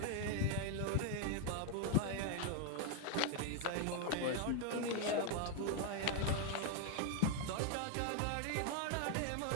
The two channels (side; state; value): both; different; correlation 0.00